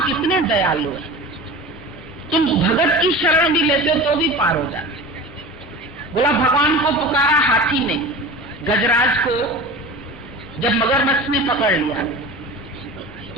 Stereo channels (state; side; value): normal; both; correlation 0.34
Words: कितने दयालु है, तुम भगत की शरण भी लेते हो तो भी पार हो जाते। बोला भगवान को पुकारा हाथी ने, गजराज को जब मगरमच्छ ने पकड़ लिया